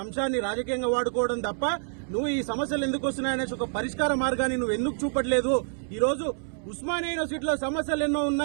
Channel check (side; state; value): left; silent; 60 dB below the other